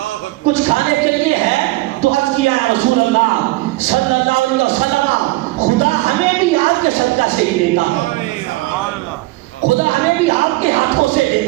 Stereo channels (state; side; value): quieter; left; 20.0 dB